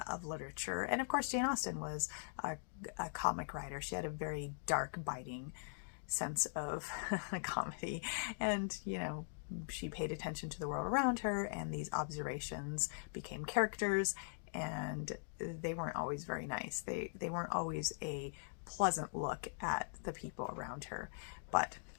of literature. And of course, Jane Austen was a comic writer. She had a very dark, biting sense of comedy, and she paid attention to the world around her, and these observations became characters, and they weren't always very nice. They weren't always a pleasant look at the people around her, but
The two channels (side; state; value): right; silent; digital silence